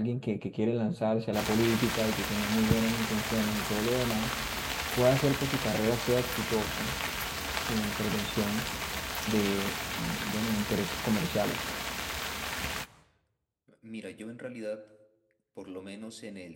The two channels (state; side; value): identical; both; correlation 1.00